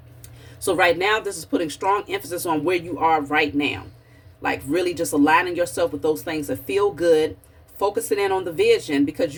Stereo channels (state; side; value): identical; both; correlation 1.00